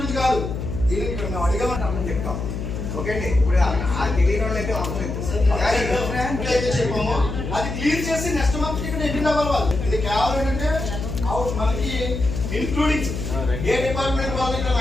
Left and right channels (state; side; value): noise; left; hum, 5 dB below the sound